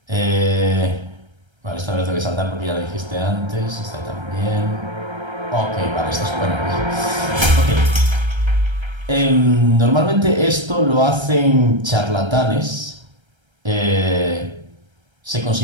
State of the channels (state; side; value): late; left; 1.3 ms